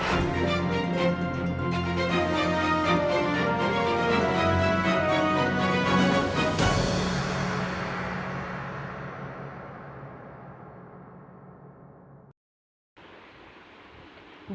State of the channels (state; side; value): identical; both; correlation 1.00